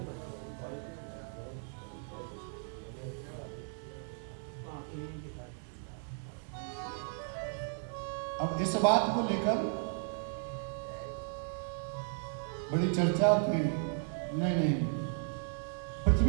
अब इस बात को लेकर बड़ी चर्चा की। नहीं,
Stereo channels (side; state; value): left; silent; 54 dB below the other